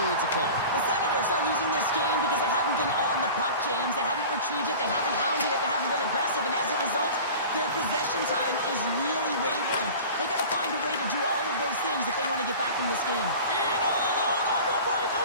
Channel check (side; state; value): both; inverted; correlation -0.38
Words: of play. The Senators are losing this game because they haven't been on the puck, James. They haven't retrieved it. They haven't hounded it. They haven't been aggressive. And as a result, their possession time is really wavering. They got to find a way to do all of those things if they want to get back in this game. In all alone on the